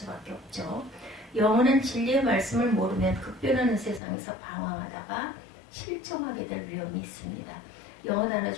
없죠. 영원한 진리의 말씀을 모르면 급변하는 세상에서 방황하다가 실종하게 될 위험이 있습니다. 영어 단어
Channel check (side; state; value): right; drops out; at 4.0 s